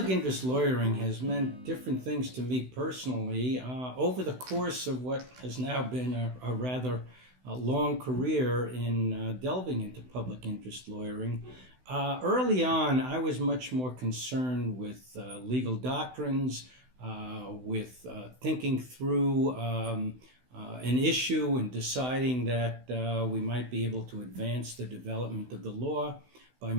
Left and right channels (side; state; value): left; late; 16 ms